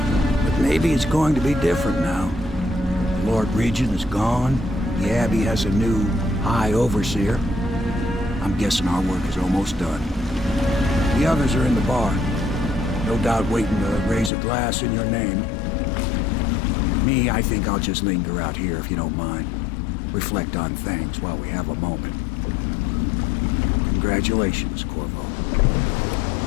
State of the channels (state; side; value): drops out; right; at 14.3 s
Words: But maybe it's going to be different now. The Lord Regent is gone. The Abbey has a new High Overseer. I'm guessing our work is almost done. The others are in the bar. No doubt waiting to raise a glass in your name. Me, I think I'll just linger out here if you don't mind. Reflect on things while we have a moment. Congratulations, Corvo.